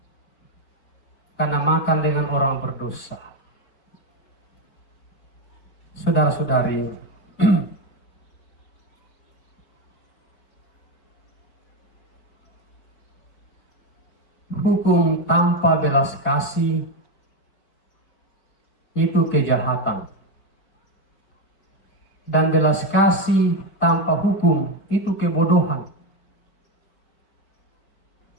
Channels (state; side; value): late; right; 5.0 ms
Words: karena makan dengan orang berdosa. Saudara-saudari, hukum tanpa belas kasih itu kejahatan. dan belas kasih tanpa hukum itu kebodohan.